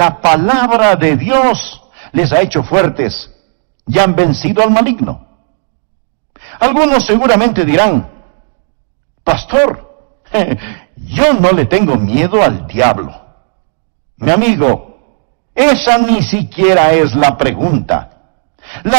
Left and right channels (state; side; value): silent; left; 62 dB below the other